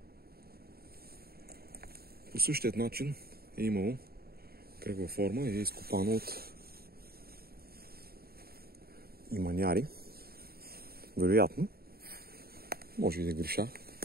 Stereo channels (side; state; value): left; late; 0.45 ms